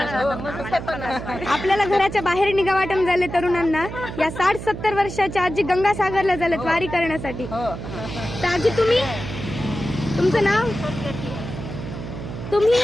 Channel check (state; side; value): noise; right; hum, 9 dB below the sound